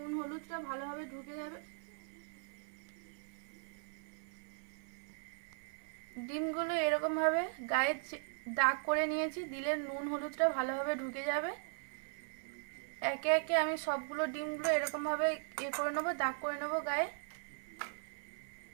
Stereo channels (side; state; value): left; silent; 52 dB below the other